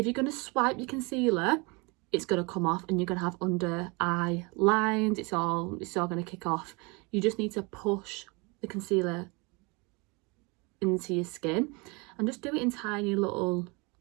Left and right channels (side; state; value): left; quieter; 28.6 dB